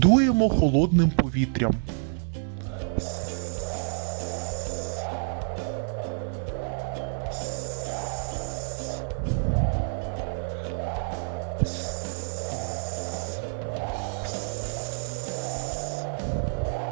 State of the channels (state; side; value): silent; left; digital silence